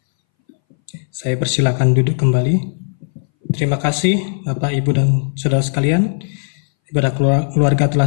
Saya persilakan duduk kembali. Terima kasih Bapak, Ibu, dan Saudara sekalian. Ibadah keluarga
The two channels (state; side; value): silent; right; 63 dB below the other